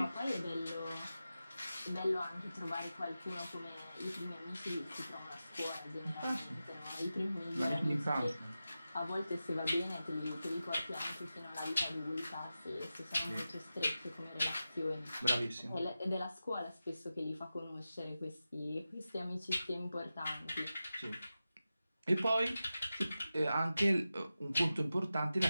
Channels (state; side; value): inverted; both; correlation -0.93